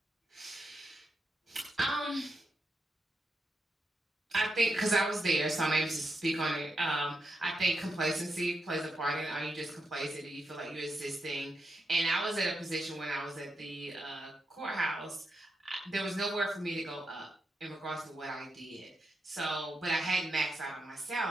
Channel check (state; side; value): normal; both; correlation 0.84